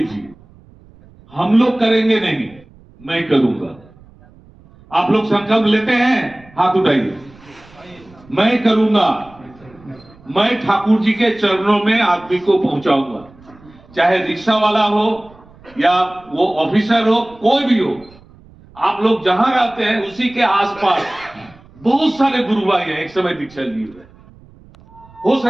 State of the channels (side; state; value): right; noise; rumble, 25 dB below the sound